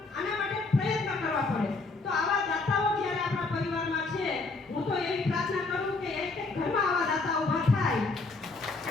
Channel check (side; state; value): right; quieter; 3.7 dB